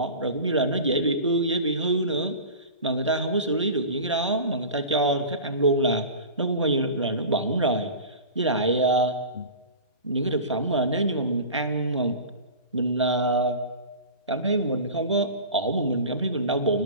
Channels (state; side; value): inverted; both; correlation -0.35